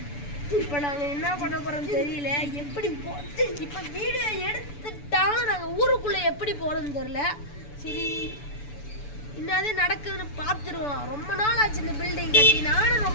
இப்போ நாங்கள் என்ன பண்ண போகிறோம்னு தெரியல. எப்படி இப்போ வீடியோ எடுத்துட்டாலும் நாங்கள் ஊருக்குள்ளே எப்படி போகிறோம்னு தெரியல. சரி, என்னது நடக்குதுன்னு பார்த்துருவோம். ரொம்ப நாள் ஆச்சு இந்த பில்டிங் கட்டி. நானும்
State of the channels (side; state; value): right; late; 6.9 ms